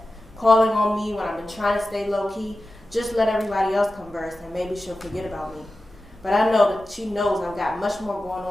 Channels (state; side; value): normal; both; correlation 0.94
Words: Calling on me when I've been trying to stay low-key, just let everybody else converse and maybe she'll forget about me. But I know that she knows I've got much more going